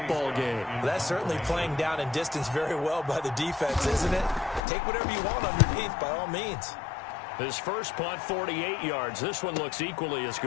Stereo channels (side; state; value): right; drops out; at 4.6 s